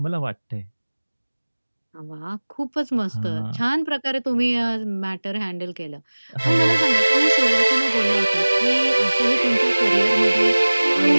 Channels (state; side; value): inverted; both; correlation -1.00